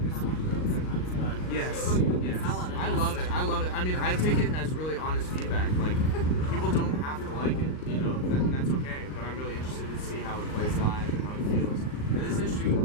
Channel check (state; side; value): late; right; 38 ms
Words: song though sometimes, but Yes, yes. sell it, I I guess. love it. I love it. I mean, I take it as really honest feedback. Like, people don't have to like it, you know, that's okay. But I'm really interested to see how it plays live and how it feels. And this is an